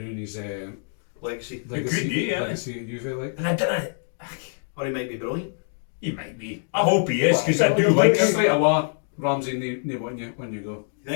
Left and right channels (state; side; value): silent; right; 62 dB below the other